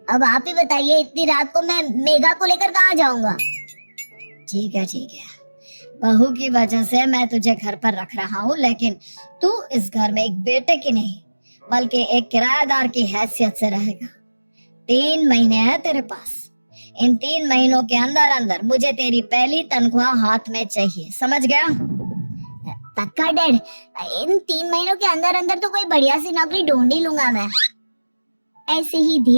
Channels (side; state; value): both; inverted; correlation -1.00